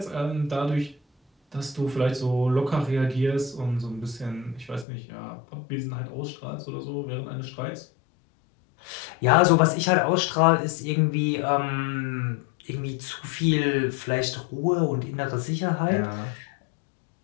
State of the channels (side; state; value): right; drops out; at 4.9 s